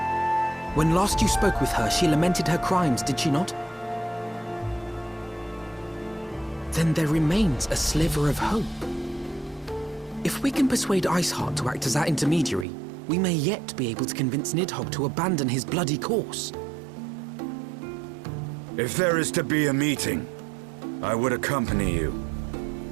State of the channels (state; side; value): drops out; left; at 12.7 s